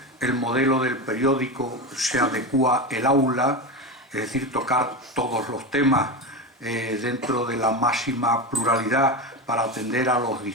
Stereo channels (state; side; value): normal; both; correlation 0.19